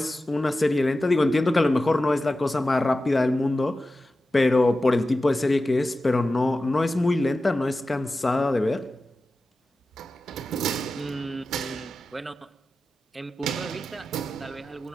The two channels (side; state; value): both; normal; correlation 0.94